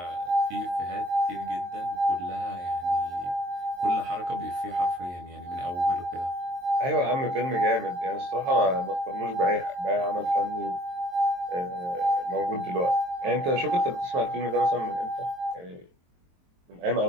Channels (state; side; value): late; left; 23 ms